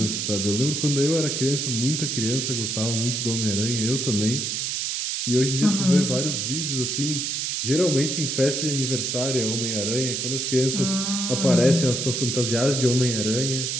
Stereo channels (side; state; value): right; noise; hiss, 1 dB below the sound